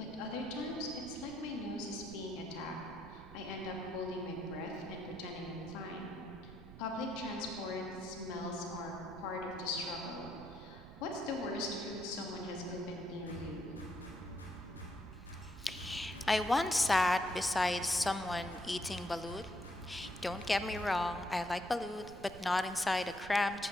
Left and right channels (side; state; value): right; noise; rumble, 15 dB below the sound